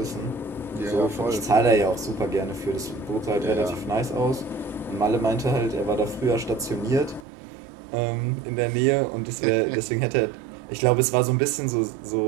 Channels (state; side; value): drops out; left; at 7.2 s